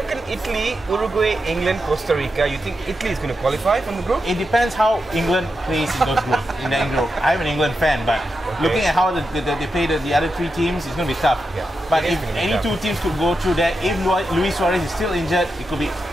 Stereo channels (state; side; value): normal; both; correlation 0.88